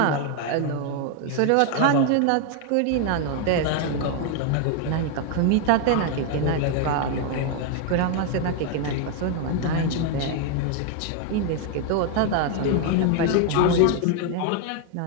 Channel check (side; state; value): both; different; correlation 0.01